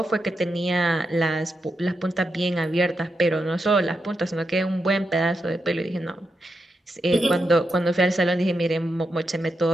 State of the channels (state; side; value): normal; both; correlation 0.85